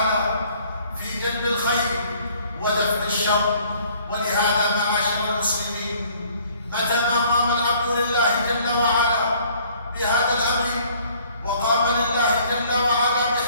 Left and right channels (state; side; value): inverted; both; correlation -0.58